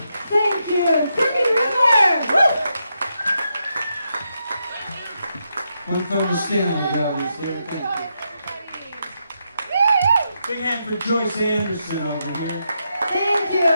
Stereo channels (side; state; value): both; inverted; correlation -0.83